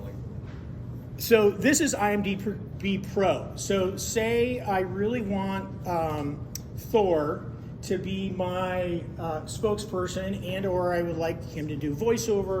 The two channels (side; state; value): both; identical; correlation 1.00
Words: So this is IMDb Pro. So say I really want Thor to be my spokesperson, and or I would like him to do